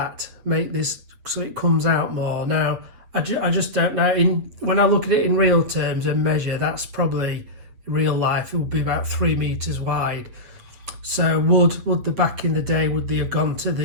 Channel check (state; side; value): late; left; 8.5 ms